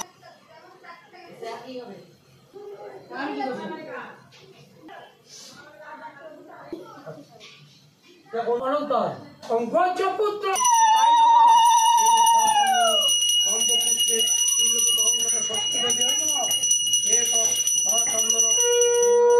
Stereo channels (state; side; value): identical; both; correlation 1.00